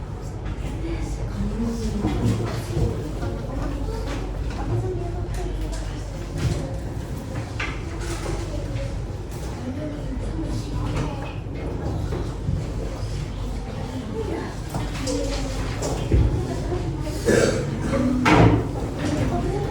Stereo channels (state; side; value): identical; both; correlation 1.00